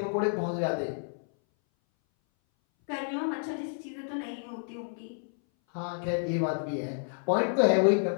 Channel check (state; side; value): silent; right; 58 dB below the other